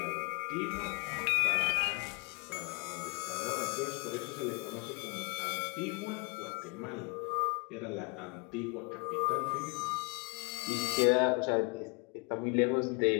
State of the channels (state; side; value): quieter; right; 31.7 dB